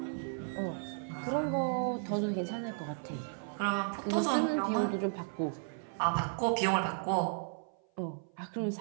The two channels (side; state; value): left; silent; 55 dB below the other